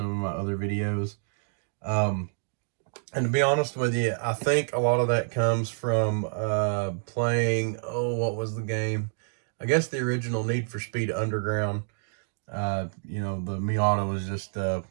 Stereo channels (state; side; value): silent; left; digital silence